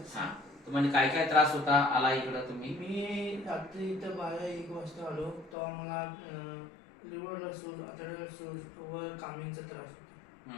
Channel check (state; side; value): drops out; right; at 5.6 s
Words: हां, तुम्हाला काय काय त्रास होता, आला इकडं तुम्ही? मी रात्री इथं 12-1 वाजता आलो तेव्हा मला लिव्हरला सूज, आतड्याला सूज व कामिंगचा त्रास